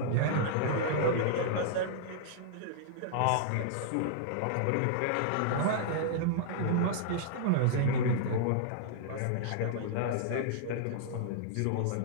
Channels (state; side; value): different; both; correlation -0.01